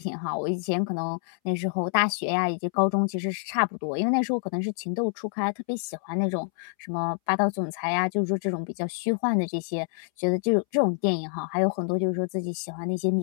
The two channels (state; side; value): silent; right; 60 dB below the other